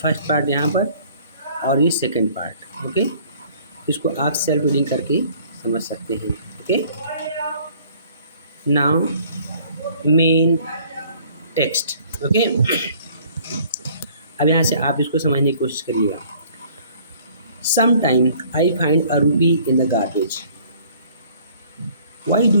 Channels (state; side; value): inverted; both; correlation -0.56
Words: फर्स्ट पार्ट यहाँ पर और ये सेकंड पार्ट। ओके, इसको आप सेल्फ रीडिंग करके समझ सकते हैं। Okay, now main text. Okay, अब यहाँ से आप इसको समझने की कोशिश करिएगा। Sometimes I find a rupee in the garbage. Why do